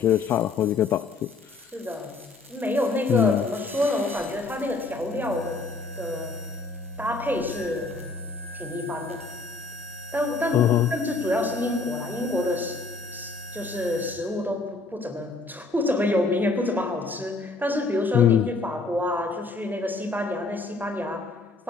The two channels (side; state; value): right; quieter; 3.8 dB